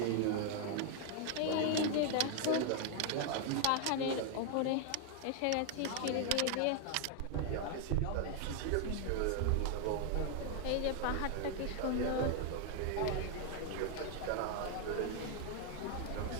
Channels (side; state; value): both; different; correlation 0.00